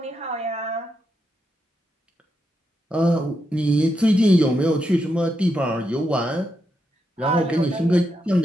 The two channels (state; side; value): normal; both; correlation 0.84